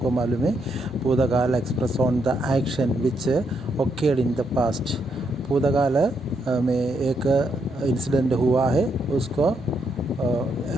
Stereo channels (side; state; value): both; normal; correlation 0.77